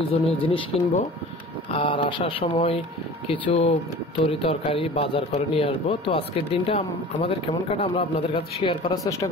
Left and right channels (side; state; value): both; normal; correlation 0.41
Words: জিনিস কিনবো, আর আসার সময় কিছু তরি তরকারি বাজার করে নিয়ে আসবো। তো আজকের দিনটা আমাদের কেমন কাটা আমরা আপনাদের কাছে শেয়ার করার চেষ্টা